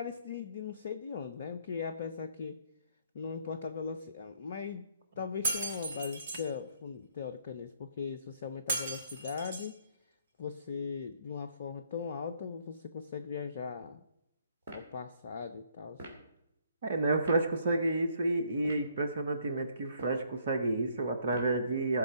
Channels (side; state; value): both; inverted; correlation -0.66